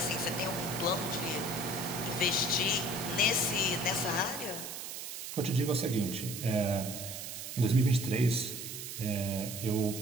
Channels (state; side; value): noise; right; hiss, 8 dB below the sound